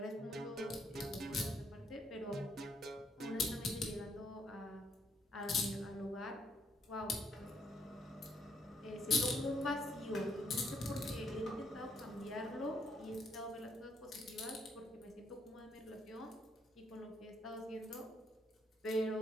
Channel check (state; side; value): normal; both; correlation 0.71